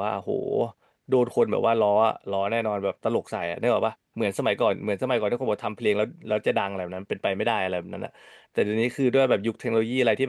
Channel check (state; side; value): identical; both; correlation 1.00